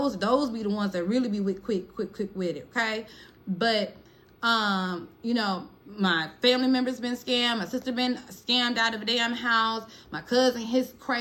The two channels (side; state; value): both; identical; correlation 1.00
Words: be the ones that really be quick with it, okay? But you know, my family member's been scammed. My sister been scammed out of a damn house. My cousin, his